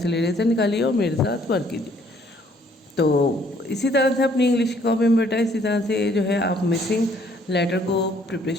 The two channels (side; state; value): both; normal; correlation 0.63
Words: इरेजर निकालिए और मेरे साथ वर्क कीजिए। तो इसी तरह से अपनी इंग्लिश की कॉपी में बेटा इसी तरह से जो है आप मिसिंग लेटर को